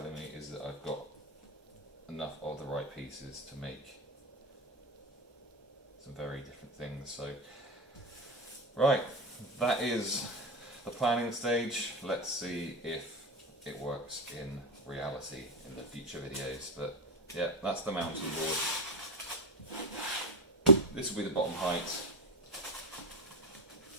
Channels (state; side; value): normal; both; correlation 0.15